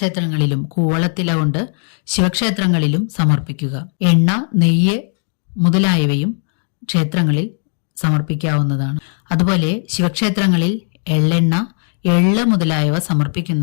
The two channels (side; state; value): right; silent; 55 dB below the other